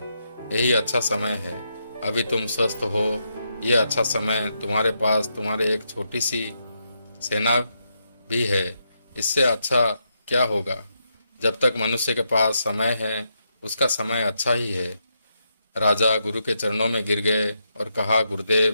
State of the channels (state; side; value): inverted; both; correlation -0.81